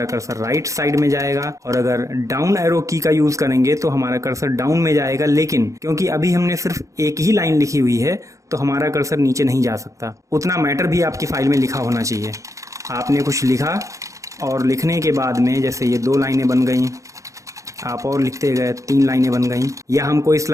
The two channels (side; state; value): left; late; 0.15 ms